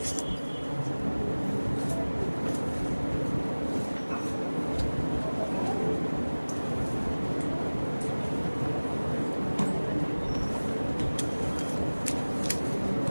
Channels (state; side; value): inverted; both; correlation -1.00